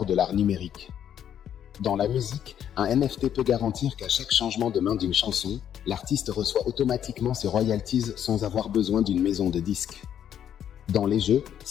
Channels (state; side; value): quieter; right; 9.6 dB